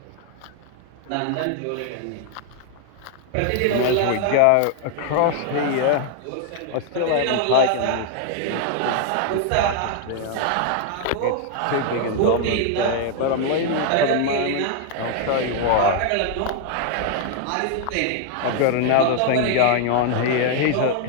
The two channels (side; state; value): both; different; correlation 0.00